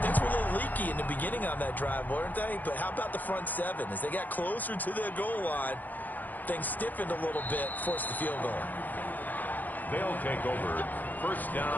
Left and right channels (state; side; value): late; right; 0.084 ms